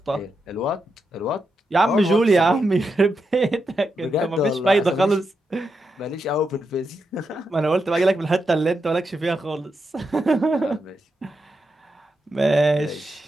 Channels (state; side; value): normal; both; correlation 0.85